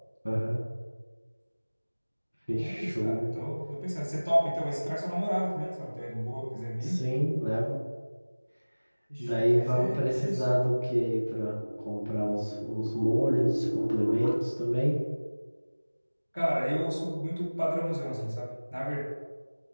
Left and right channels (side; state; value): both; inverted; correlation -1.00